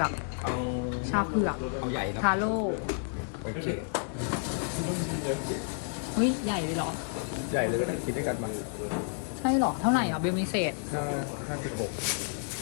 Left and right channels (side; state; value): right; silent; 57 dB below the other